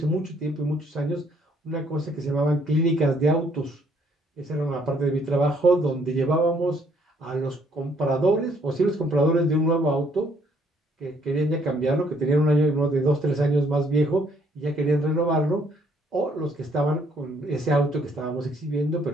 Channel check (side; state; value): both; normal; correlation 0.66